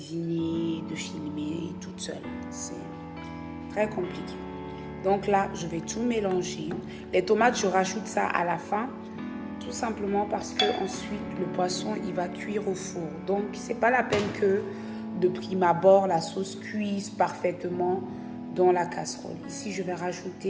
de filmer toute seule. C'est très compliqué. Donc là, je vais tout mélanger. Les tomates, je rajoute ça à la fin. Tout simplement parce que ensuite le poisson il va cuire au four. Donc c'est pas la peine que de prime abord la sauce cuise parfaitement dans la casserole. Ici je vais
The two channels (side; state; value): both; identical; correlation 1.00